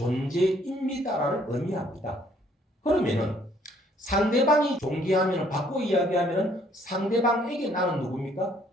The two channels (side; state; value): both; normal; correlation 0.64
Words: 의미합니다. 그러면은 상대방이 존귀하면 바꿔 이야기하면 상대방에게 나는 누굽니까?